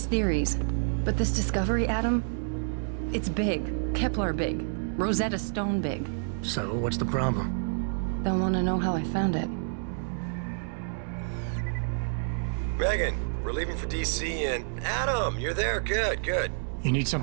theories. But this discovery, Adam, it's big. Kepler big. Rosetta Stone big. So, what's the problem? They'll want to know how I found it. Megan, we're leaving for DC and... Adam, you're there. Good, good. You need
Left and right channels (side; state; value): left; silent; digital silence